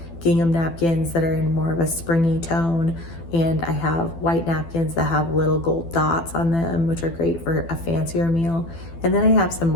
gingham napkins that are in more of a springy tone, and I have white napkins that have little gold dots on them, which are great for a fancier meal. And then I have some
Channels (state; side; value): late; right; 12 ms